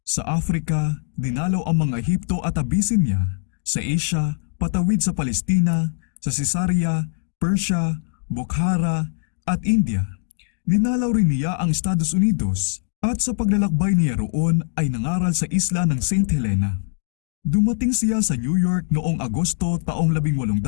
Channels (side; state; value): right; silent; digital silence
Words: Sa Africa, dinalaw ang mga Ehipto at Abyssinia. Sa Asia, patawid sa Palestina, sa Caesarea, Persia, Bokhara at India. Dinalaw rin niya ang Estados Unidos at sa paglalakbay niya roon ay nangaral sa isla ng St. Helena. Dumating siya sa New York noong Agosto taong